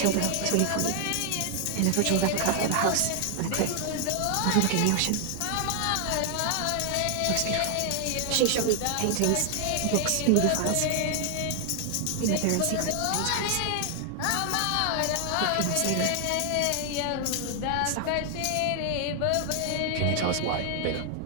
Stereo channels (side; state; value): both; different; correlation 0.00